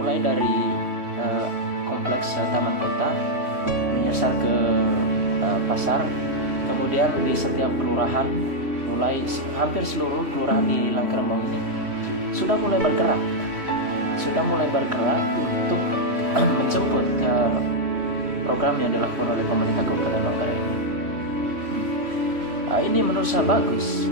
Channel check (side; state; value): left; late; 3.1 ms